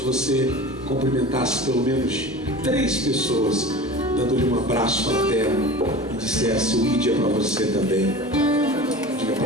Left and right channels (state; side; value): normal; both; correlation 0.36